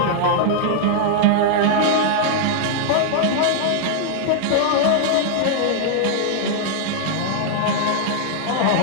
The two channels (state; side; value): different; both; correlation 0.00